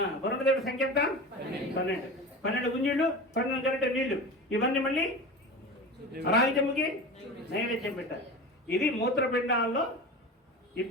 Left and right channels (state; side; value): normal; both; correlation 0.31